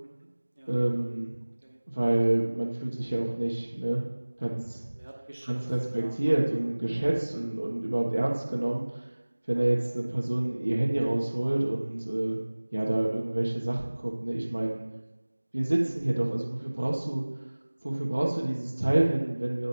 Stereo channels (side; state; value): both; inverted; correlation -1.00